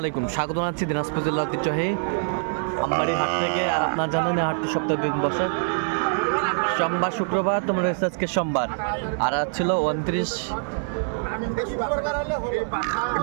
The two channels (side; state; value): left; silent; 58 dB below the other